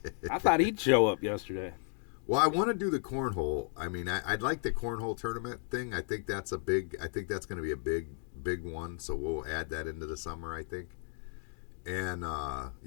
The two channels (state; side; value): silent; right; 55 dB below the other